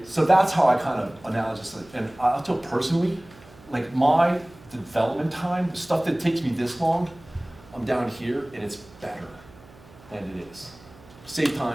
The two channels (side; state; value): right; noise; hum, 24 dB below the sound